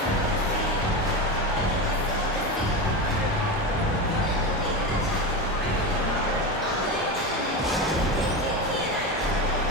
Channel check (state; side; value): normal; both; correlation 0.20